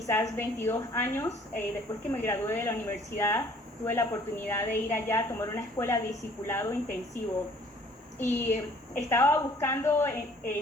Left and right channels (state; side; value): normal; both; correlation 0.57